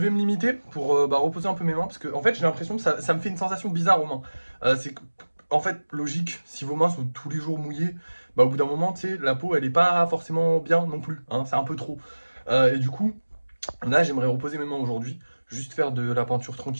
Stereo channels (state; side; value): inverted; both; correlation -1.00